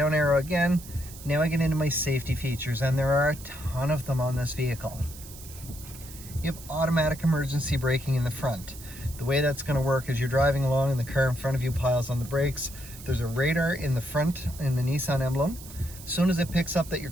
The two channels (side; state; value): right; noise; hiss, 16 dB below the sound